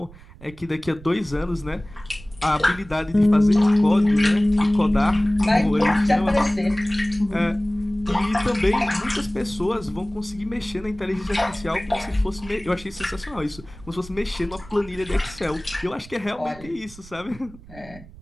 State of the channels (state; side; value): noise; right; rumble, 20 dB below the sound